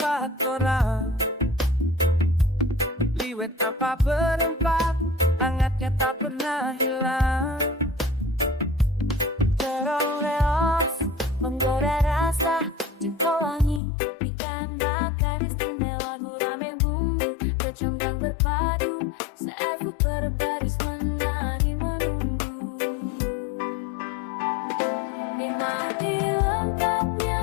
orang, liwet tanpa berempat, hangatnya tak pernah hilang. Terong leos menggoda rasa, jengkol wangi, ikan bakar istimewa, gurame bumbu, kecombrang berpadu, seafood berbaris menari menunggu. Nikmati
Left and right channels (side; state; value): right; drops out; at 13.8 s